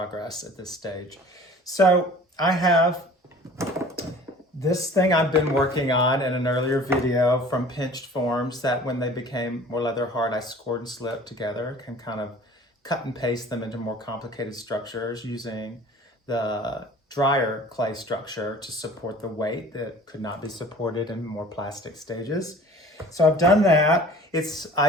at this stage. So I have this thing I've been working on in an earlier video from pinched forms that when they became more leather hard I scored and slipped together, can kind of cut and paste them into more complicated structures using the drier clay structure to support the weight that could not be supported in more plastic stages. So I've done that.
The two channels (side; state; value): both; normal; correlation 0.46